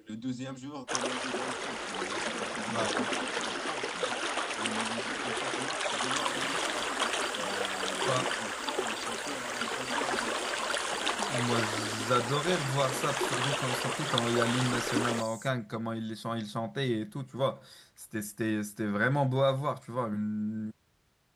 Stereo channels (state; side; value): identical; both; correlation 1.00